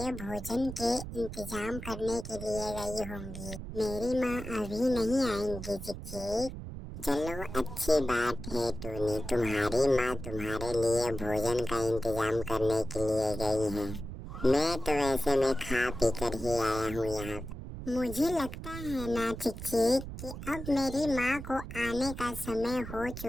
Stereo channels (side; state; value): right; noise; rumble, 9 dB below the sound